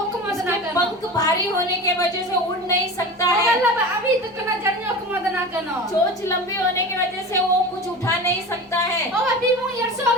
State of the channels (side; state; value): both; normal; correlation 0.32